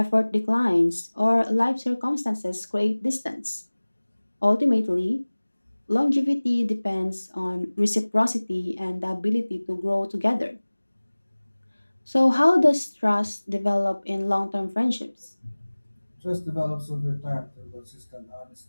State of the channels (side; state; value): both; inverted; correlation -1.00